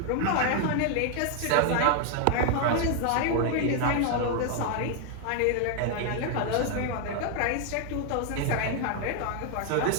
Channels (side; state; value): both; different; correlation 0.00